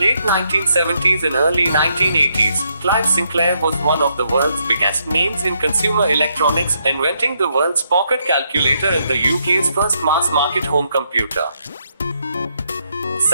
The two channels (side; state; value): both; inverted; correlation -0.76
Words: 1970s and early 1980s, Clive Sinclair was one of the world's biggest names in consumer electronics, inventing the world's pocket calculator and the UK's first mass-market home computer.